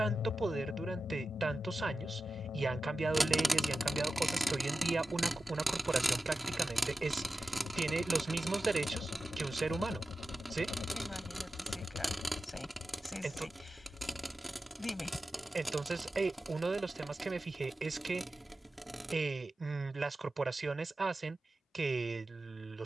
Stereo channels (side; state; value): both; normal; correlation 0.93